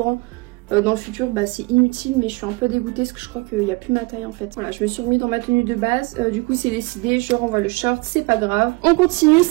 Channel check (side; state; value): left; quieter; 25.8 dB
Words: dans le futur, bah c'est inutile. Mais je suis un peu dégoûtée parce que je crois qu'il n'y a plus ma taille en fait. Voilà, je me suis remis dans ma tenue de base. Du coup c'est décidé. Je renvoie le short. C'est pas grave. On continue.